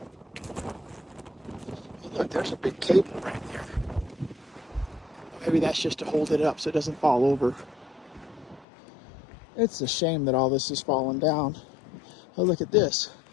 Look, there's a big cable right there. Maybe that's just to hold it up so it doesn't fall over. It's a shame that all this is falling down. Oh, look at this.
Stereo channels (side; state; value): right; drops out; at 8.7 s